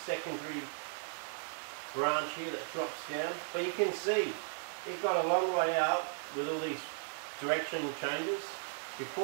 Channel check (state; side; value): silent; left; digital silence